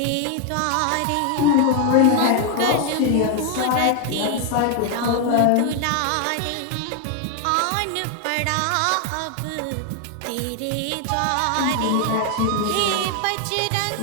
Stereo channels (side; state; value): both; different; correlation 0.00